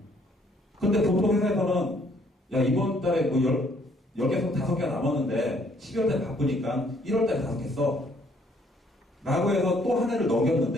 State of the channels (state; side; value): normal; both; correlation 0.65